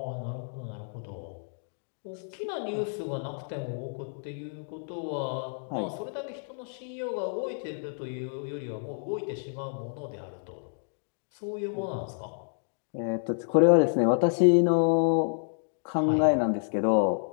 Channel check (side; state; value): right; silent; digital silence